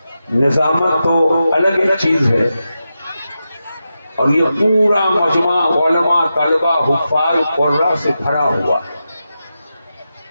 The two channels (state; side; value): inverted; both; correlation -0.90